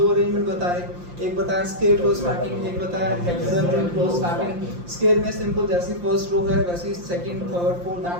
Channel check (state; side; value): late; left; 5.7 ms